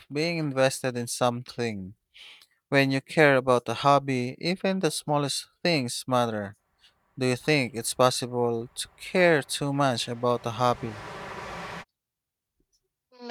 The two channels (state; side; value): identical; both; correlation 1.00